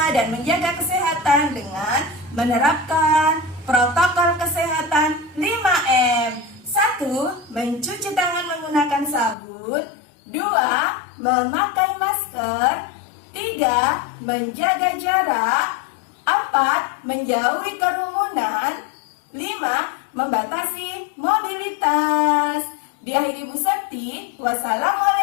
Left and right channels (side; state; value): right; drops out; at 9.3 s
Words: dan menjaga kesehatan dengan menerapkan protokol kesehatan 5M. 1. Mencuci tangan menggunakan sabun. 2. Memakai masker. 3. Menjaga jarak. 4. Menjauhi kerumunan. 5. Membatasi mobilitas. Diakhiri Bu Septi,